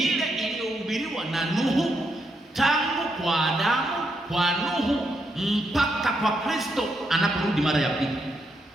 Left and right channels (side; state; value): both; normal; correlation 0.80